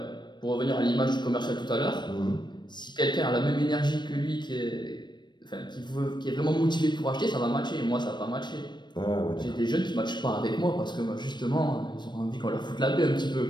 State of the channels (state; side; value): late; right; 0.22 ms